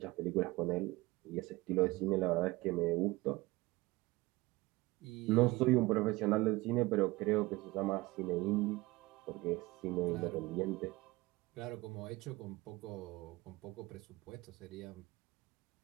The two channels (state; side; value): quieter; left; 21.1 dB